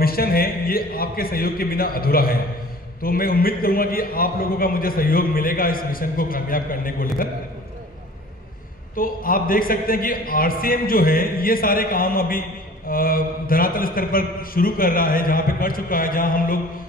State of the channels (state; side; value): normal; both; correlation 0.46